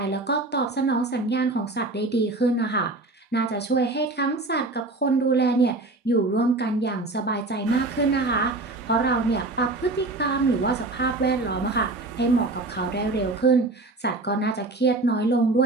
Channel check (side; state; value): left; quieter; 3.0 dB